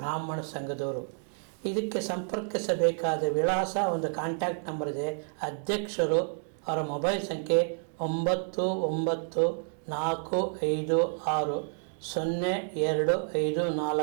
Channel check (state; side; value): silent; left; 58 dB below the other